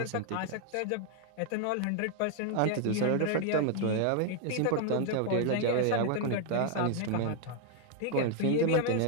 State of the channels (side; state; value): both; different; correlation 0.00